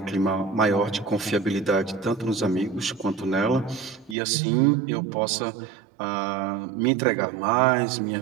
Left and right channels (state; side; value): drops out; left; at 4.2 s